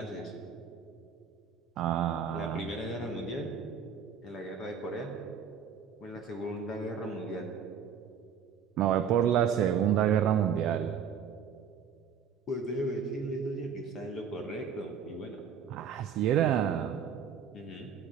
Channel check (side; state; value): left; quieter; 7.2 dB